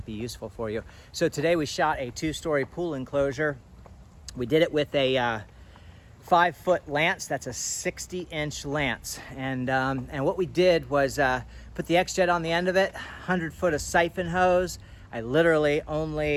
be useful for you. So today we shot a 2-story pool enclosure. We did it with a 5-foot lance. That's a 60-inch lance. And what we did was put the XJet on the end of it, 100 foot of siphon hose. I literally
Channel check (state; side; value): identical; both; correlation 1.00